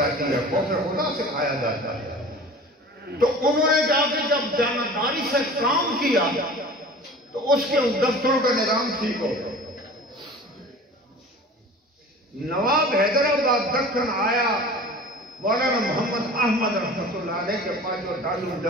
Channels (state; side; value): normal; both; correlation 0.40